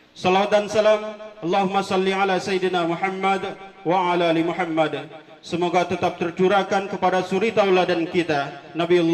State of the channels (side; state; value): both; identical; correlation 1.00